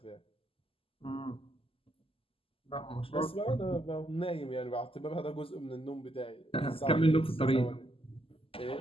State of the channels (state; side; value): late; right; 0.26 ms